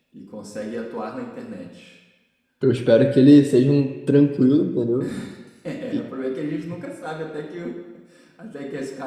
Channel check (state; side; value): identical; both; correlation 1.00